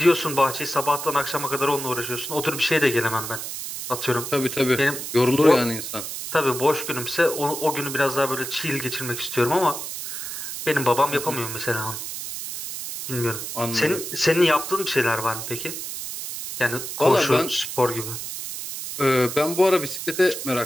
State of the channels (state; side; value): noise; right; hiss, 7 dB below the sound